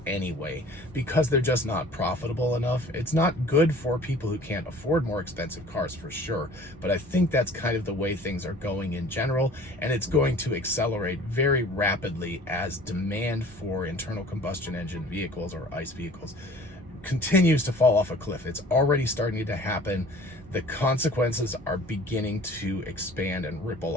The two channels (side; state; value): both; normal; correlation 0.48